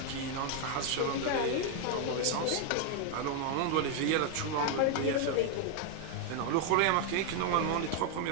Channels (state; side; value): different; both; correlation 0.01